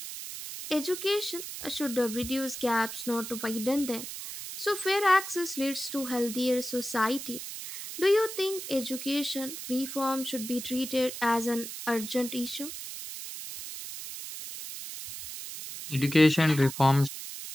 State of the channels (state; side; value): noise; right; hiss, 9 dB below the sound